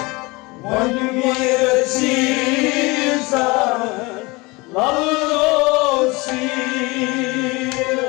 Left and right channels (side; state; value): right; quieter; 24.4 dB